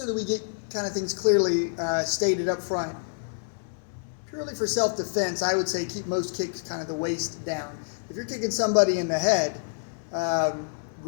that we get kind of things clearly stated up front. Purely for self-defense, I would say keep most kicks kind of the waist down. If you're kicking somebody in the head,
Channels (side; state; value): right; silent; digital silence